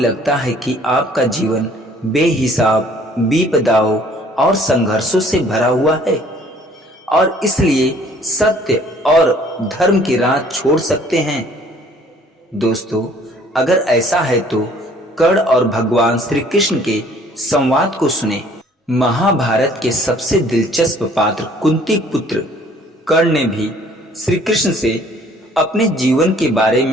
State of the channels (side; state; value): both; normal; correlation 0.57